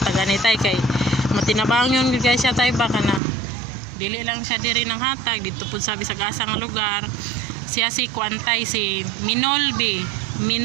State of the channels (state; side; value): drops out; left; at 3.2 s